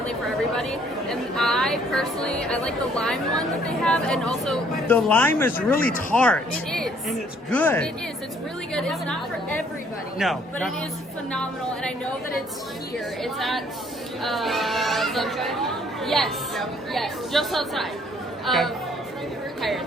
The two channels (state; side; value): normal; both; correlation 0.62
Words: for everybody. And I personally, I like the lime one that they have, and also the lime is really tart. It is, and it's good. It is. It's really good. It's not for everybody. No, but it is phenomenal, and I know that it's here. It's at yes, just outside.